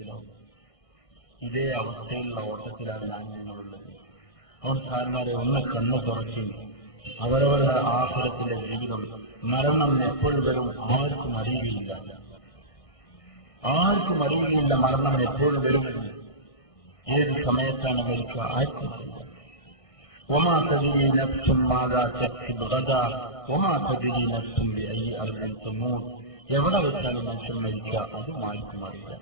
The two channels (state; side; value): late; right; 1.6 ms